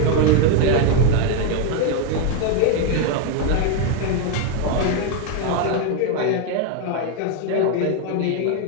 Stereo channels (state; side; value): different; both; correlation 0.01